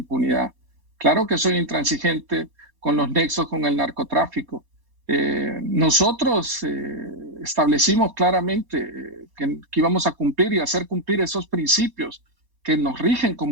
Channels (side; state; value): left; late; 4.2 ms